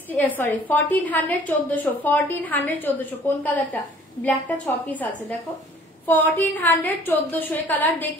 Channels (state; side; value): normal; both; correlation 0.53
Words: 1400, 1400, 1400। কোন কালারটা? ব্ল্যাকটা 6 পিস আছে, দেখো 1400, 1400 এই কালার